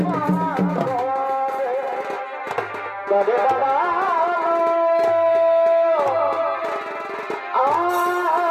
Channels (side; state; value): both; identical; correlation 1.00